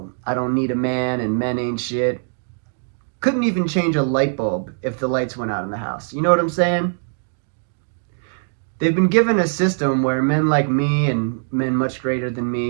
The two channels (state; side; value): silent; left; digital silence